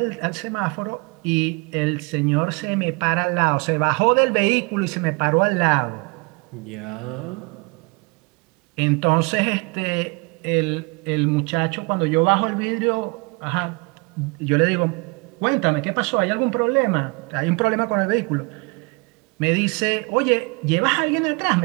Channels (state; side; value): quieter; left; 29.5 dB